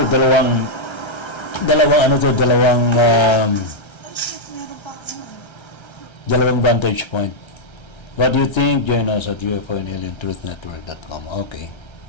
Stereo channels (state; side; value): late; right; 1.3 ms